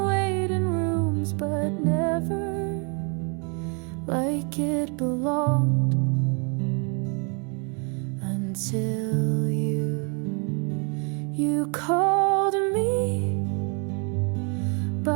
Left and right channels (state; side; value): quieter; left; 35.5 dB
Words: waiting rooms, but never like it belonged until you called me